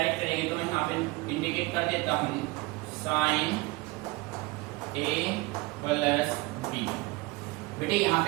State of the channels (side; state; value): left; quieter; 22.4 dB